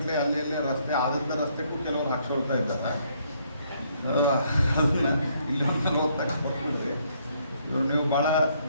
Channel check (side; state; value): both; inverted; correlation -0.69